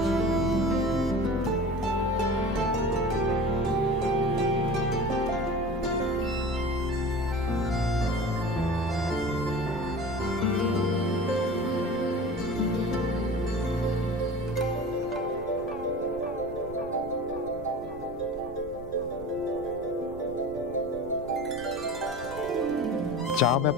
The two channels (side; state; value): right; noise; rumble, 15 dB below the sound